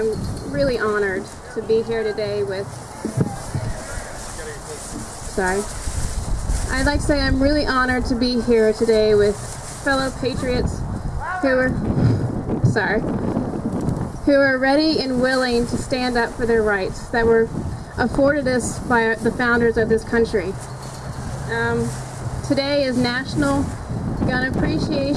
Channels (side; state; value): both; identical; correlation 1.00